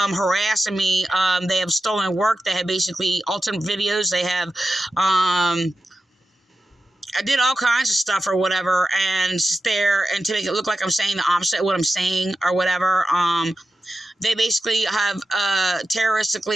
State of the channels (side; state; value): both; normal; correlation 0.92